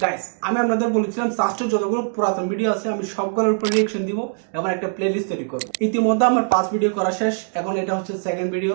Guys, আমি আপনাদের বলেছিলাম সাস্টের যতগুলো পুরাতন ভিডিও আছে আমি সবগুলোর উপর রিঅ্যাকশন দিব এবং একটা প্লেলিস্ট তৈরি করব। ইতিমধ্যে আমার 5 ভিডিও করা শেষ, এখন এটা হচ্ছে সেকেন্ড ভিডিও।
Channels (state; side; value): silent; left; digital silence